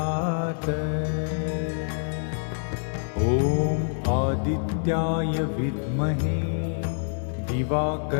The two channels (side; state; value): right; silent; digital silence